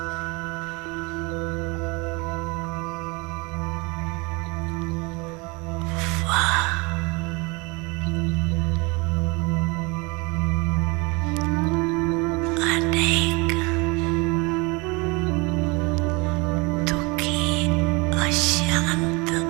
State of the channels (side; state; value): left; quieter; 27.5 dB